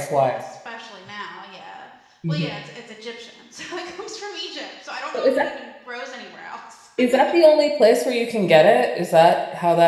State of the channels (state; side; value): identical; both; correlation 1.00